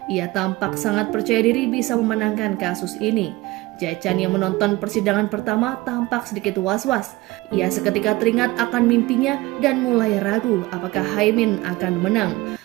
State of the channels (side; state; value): left; quieter; 20.0 dB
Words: Ia tampak sangat percaya diri bisa memenangkan kasus ini. Jae-chan yang menonton persidangan pertama tampak sedikit was-was. Ia seketika teringat akan mimpinya dan mulai ragu apakah Hae-min akan menang.